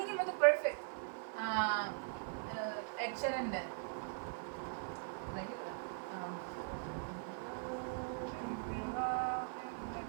മറ്റേ പെർഫെക്റ്റ് എക്സലന്റ്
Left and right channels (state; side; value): silent; left; 50 dB below the other